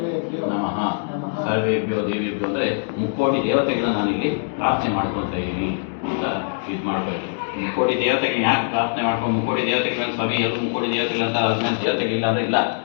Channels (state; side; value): silent; right; digital silence